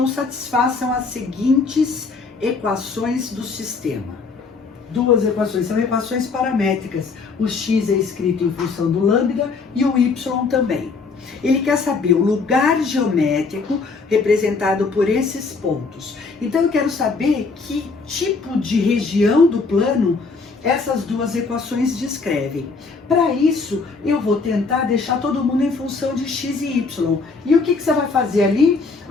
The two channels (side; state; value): right; quieter; 4.4 dB